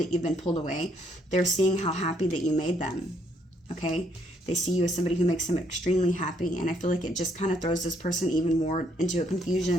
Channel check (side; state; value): both; normal; correlation 0.70